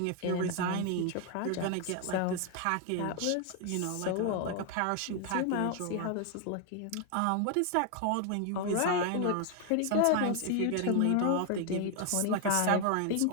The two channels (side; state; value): both; different; correlation 0.00